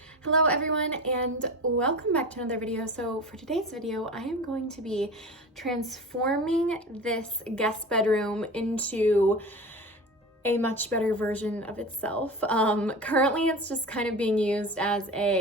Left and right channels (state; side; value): normal; both; correlation 0.31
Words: Hello everyone and welcome back to another video. So for today's video, I am going to be transforming this guest bedroom into a much better version of itself. Currently it's just kind of being used as